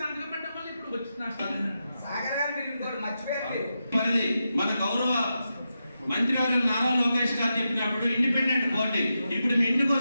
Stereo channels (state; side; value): inverted; both; correlation -0.88